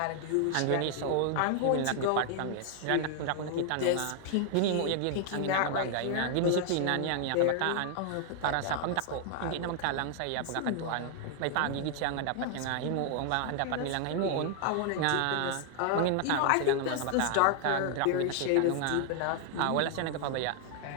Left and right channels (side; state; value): both; different; correlation 0.00